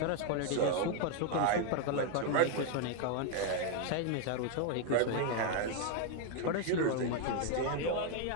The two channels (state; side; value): different; both; correlation 0.01